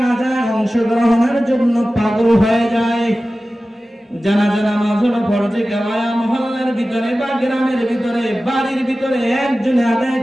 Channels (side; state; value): both; normal; correlation 0.95